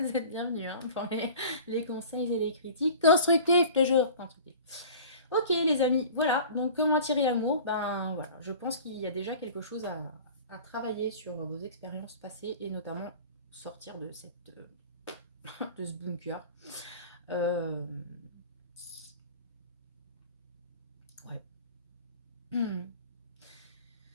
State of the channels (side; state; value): both; inverted; correlation -0.41